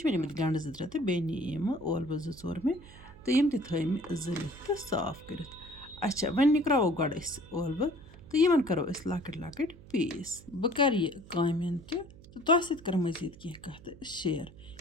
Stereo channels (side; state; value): right; noise; hum, 20 dB below the sound